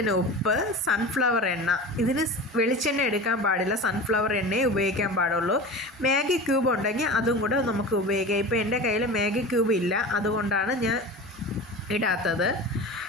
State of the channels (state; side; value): normal; both; correlation 0.33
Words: ഉപ്പ്, സൺഫ്ലവർ എണ്ണ. ഇതിന് വെളിച്ചെണ്ണ എടുക്കാൻ പാടില്ല, സൺഫ്ലവർ എണ്ണയെ ഉപയോഗിക്കാൻ പാടുള്ളൂ. മാഗി ക്യൂബ് ഉണ്ടെങ്കിൽ അതും കൂടെ നമുക്ക് ഉപയോഗിക്കാം. ഇപ്പോൾ എൻ്റെ കയ്യിൽ മാഗി ക്യൂബ് ഇല്ല, അതുകൊണ്ടാണ് ഞാൻ ഇടാത്തത്.